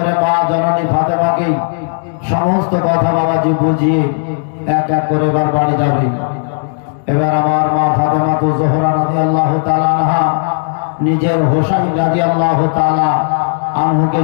মা জননী ফাতেমাকে সমস্ত কথা বাবাজি বুঝিয়ে এক এক করে এবার বাড়ি যাবে। এবার আমার মা ফাতেমা তো জোহরা রাদিয়াল্লাহু তাআলা আনহা নিজের হোসাইন রাদিয়াল্লাহু তাআলা আনহুকে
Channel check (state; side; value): silent; right; digital silence